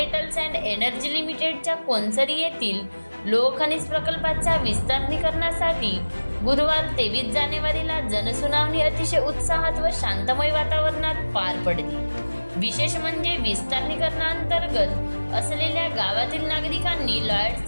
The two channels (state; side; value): inverted; both; correlation -1.00